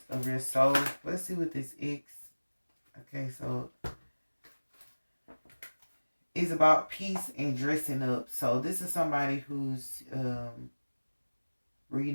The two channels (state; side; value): inverted; both; correlation -1.00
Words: of your soul. Let's see what this X. Okay, so it's about peace and dressing up. So this is somebody who's